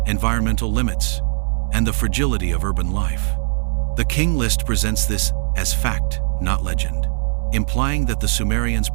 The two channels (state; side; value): silent; left; digital silence